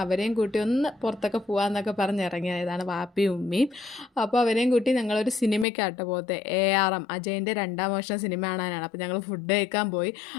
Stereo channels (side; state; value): right; drops out; at 5.7 s